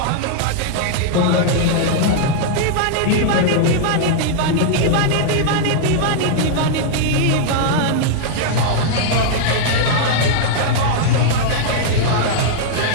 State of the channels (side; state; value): both; different; correlation -0.01